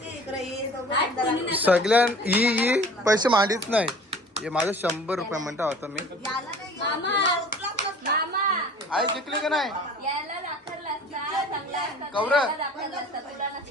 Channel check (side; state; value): both; normal; correlation 0.46